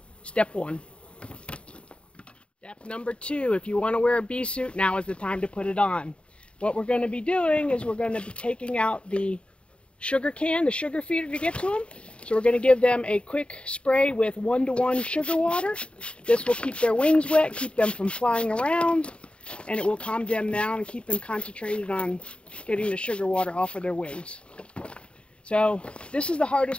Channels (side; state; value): right; late; 0.057 ms